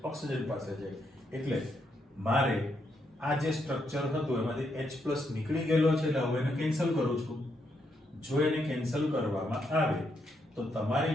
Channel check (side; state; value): both; normal; correlation 0.78